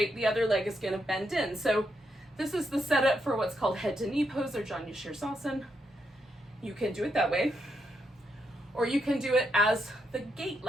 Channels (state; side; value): normal; both; correlation 0.81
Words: The other leg is gonna bend in. So this is the setup for what's called head to knee pose or Janu Shirsasana. You can do it that way, or you can do it as the gate